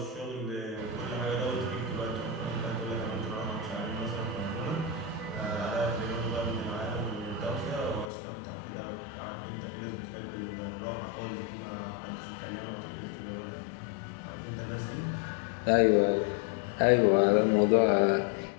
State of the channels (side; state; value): right; drops out; at 8.1 s